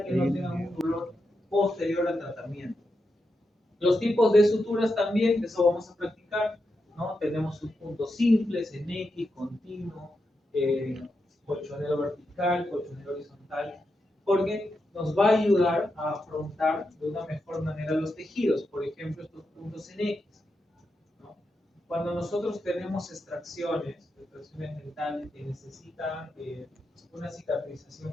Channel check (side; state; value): both; normal; correlation 0.86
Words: que no tengan un dolor posterior al tratamiento. Los tipos de suturas también, que eso vamos a practicar, ¿no? Tenemos subpuntos simples, en X, continuo, colchonero vertical, colchonero horizontal, porque nos va a ayudar a afrontar de una mejor manera los tejidos, por ejemplo, estos puntos en X, ¿no? Cuando nosotros tenemos extracciones dentales que necesitan una